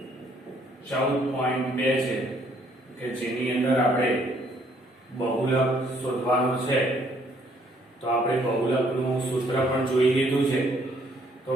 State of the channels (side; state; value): both; normal; correlation 0.65